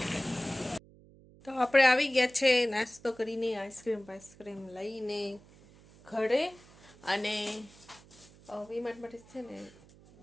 તો આપણે આવી ગયા છે નાસ્તો કરીને, આઈસ્ક્રીમ લઈને ઘરે. અને વીમાર્ટ માટે છે ને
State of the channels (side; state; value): right; noise; hum, 24 dB below the sound